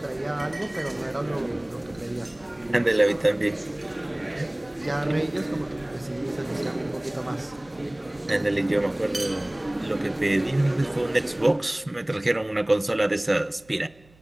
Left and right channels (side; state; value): right; noise; hum, 28 dB below the sound